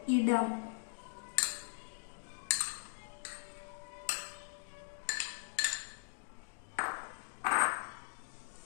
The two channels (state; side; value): silent; right; digital silence